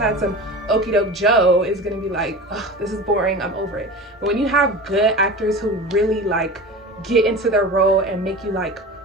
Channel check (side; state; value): both; normal; correlation 0.32